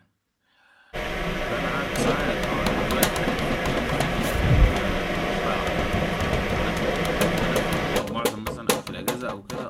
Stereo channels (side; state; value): both; identical; correlation 1.00